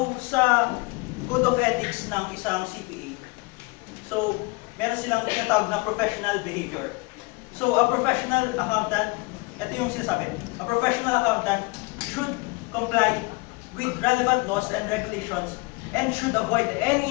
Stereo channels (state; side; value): quieter; right; 26.3 dB